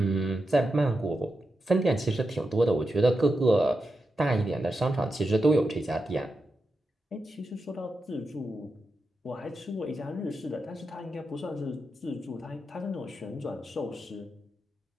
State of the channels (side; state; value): both; normal; correlation 0.88